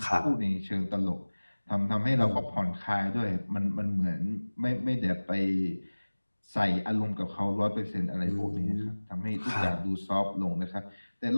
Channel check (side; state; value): both; inverted; correlation -1.00